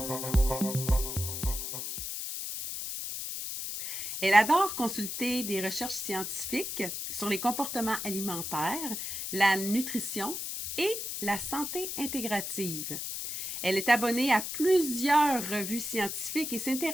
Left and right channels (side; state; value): left; noise; hiss, 5 dB below the sound